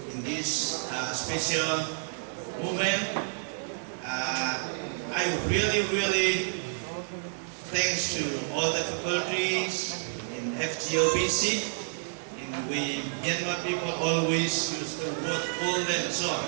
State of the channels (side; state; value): left; silent; digital silence